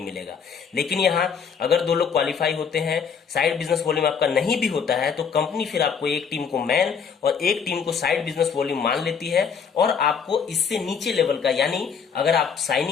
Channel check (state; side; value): quieter; right; 6.5 dB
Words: लेकिन यहाँ अगर 2 लोग क्वालिफाई होते हैं, साइड बिजनेस वॉल्यूम आपका नहीं भी होता है तो कंपनी फिर आपको एक टीम को मैन और एक टीम को साइड बिजनेस वॉल्यूम मान लेती है और आपको इससे नीचे लेवल का, यानी अगर आप